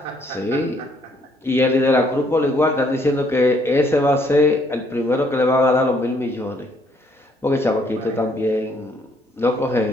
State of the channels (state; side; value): normal; both; correlation 0.67